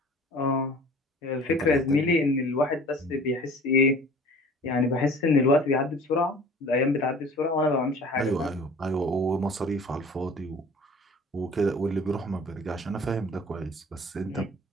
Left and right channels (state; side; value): normal; both; correlation 0.46